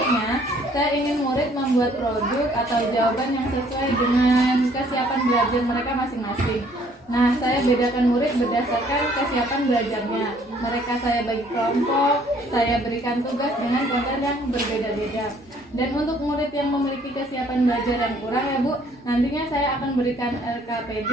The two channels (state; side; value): normal; both; correlation 0.61